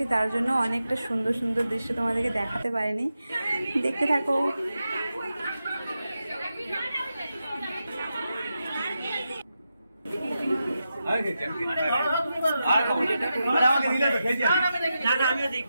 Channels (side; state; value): both; inverted; correlation -0.89